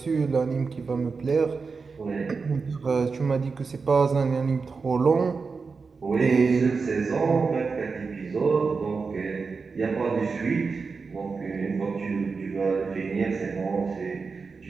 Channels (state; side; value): quieter; left; 4.8 dB